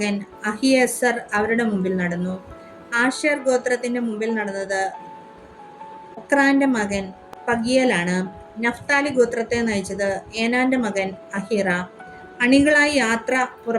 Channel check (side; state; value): both; identical; correlation 1.00